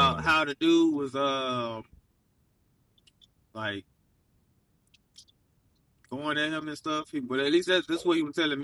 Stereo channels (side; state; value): both; identical; correlation 1.00